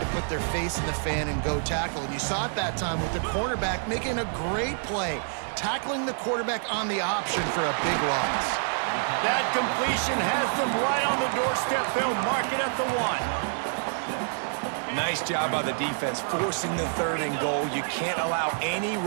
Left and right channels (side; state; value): left; silent; 60 dB below the other